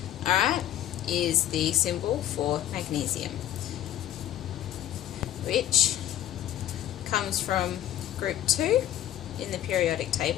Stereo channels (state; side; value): quieter; right; 12.4 dB